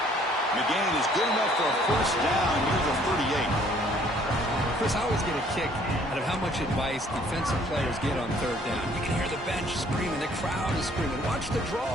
McGinn is good enough for a 1st down near the 38. Chris, I always get a kick out of how much advice defensive players get on 3rd down. You can hear the bench screaming, the crowd is screaming. Watch the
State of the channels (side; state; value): both; normal; correlation 0.60